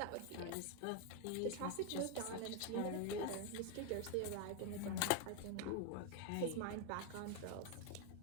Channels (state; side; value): different; both; correlation 0.01